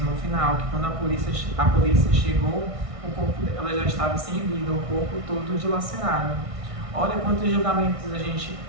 no final que quando a polícia chegou, o corpo dela já estava sem vida, o corpo todo dilacerado. Olha quantos julgamentos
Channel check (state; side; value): late; left; 1.6 ms